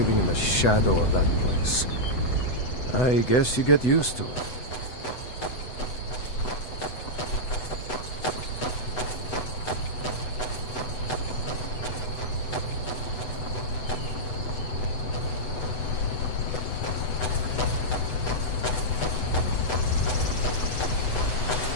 in the shadow of that place. I guess you get used to it.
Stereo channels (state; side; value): late; right; 8.0 ms